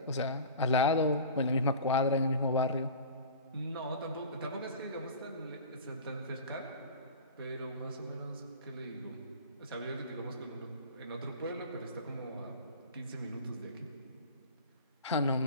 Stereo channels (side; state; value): both; inverted; correlation -0.37